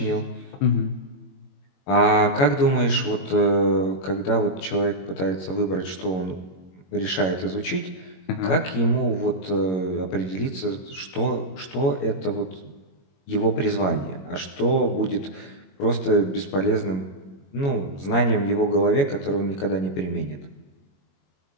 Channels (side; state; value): right; late; 21 ms